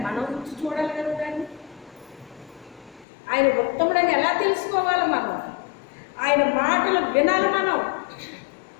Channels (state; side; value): drops out; right; at 3.1 s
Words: మనం రుచి చూడాలి కదా దాన్ని. ఆయన ఉత్తముడని ఎలా తెలుసుకోవాలి? మనం ఆయన మాటలు వినాలి, మనం